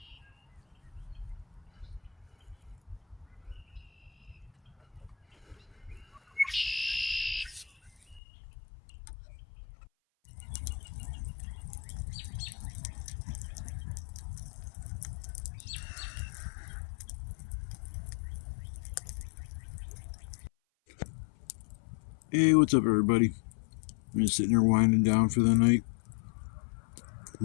Hey, what's up, everybody? I'm just sitting here winding down for the night.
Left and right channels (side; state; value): right; drops out; at 8.2 s